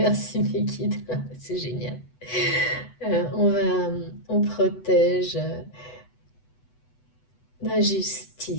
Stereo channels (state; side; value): late; right; 8.0 ms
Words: mes guides, c'est génial. On protège, La